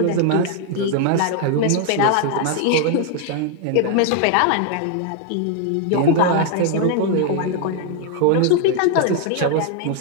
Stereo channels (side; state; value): both; different; correlation 0.00